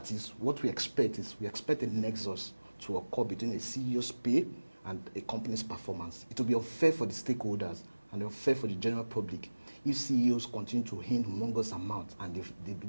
is, what we expect is, we expect a nexus to occur between a CEO's pay and a company's performance. It will be unfair for the stakeholders and unfair for the general public if CEOs continue to earn humongous amounts and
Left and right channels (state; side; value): inverted; both; correlation -1.00